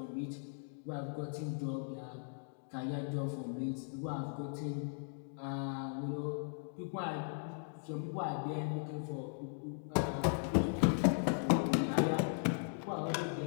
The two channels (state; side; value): silent; right; digital silence